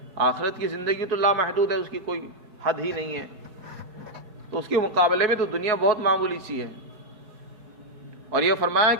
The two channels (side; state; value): left; late; 4.7 ms